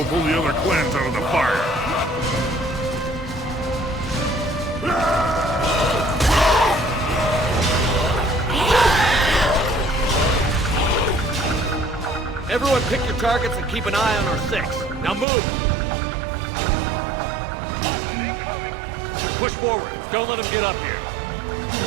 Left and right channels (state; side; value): drops out; left; at 15.2 s